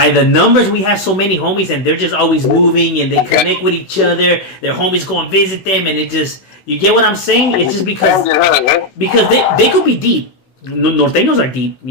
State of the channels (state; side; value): late; right; 16 ms